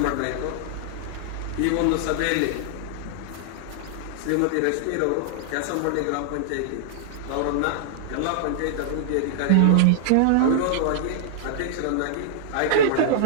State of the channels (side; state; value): both; different; correlation -0.01